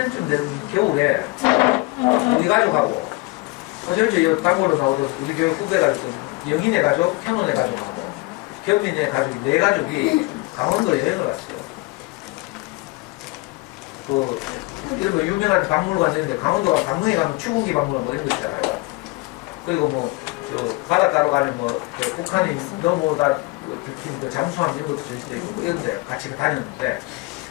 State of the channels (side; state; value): right; quieter; 24.4 dB